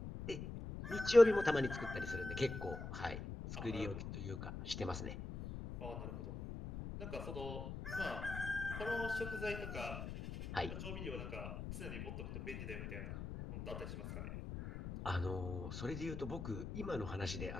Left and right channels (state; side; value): noise; left; rumble, 7 dB below the sound